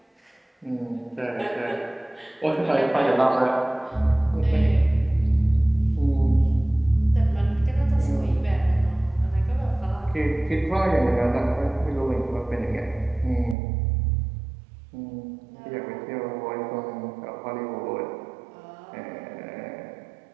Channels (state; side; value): drops out; left; at 13.6 s